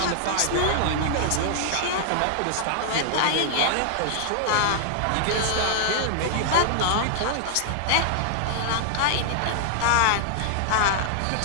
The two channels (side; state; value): both; different; correlation -0.01